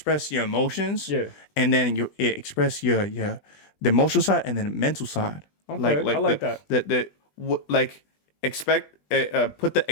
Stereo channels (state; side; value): late; right; 20 ms